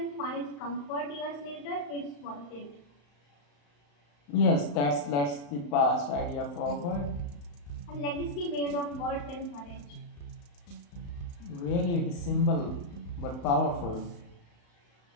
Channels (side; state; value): right; late; 35 ms